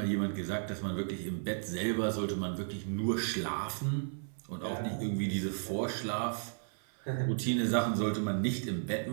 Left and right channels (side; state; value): left; silent; 55 dB below the other